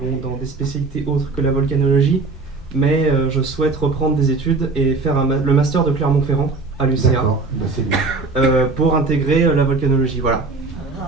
dans des spécialités autres que la volcanologie, mais je souhaite reprendre des études et faire le master de Clermont-Ferrand à l'UCA. D'accord, c'est bien. Pour intégrer la volcanologie. Voilà.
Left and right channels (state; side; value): quieter; left; 3.8 dB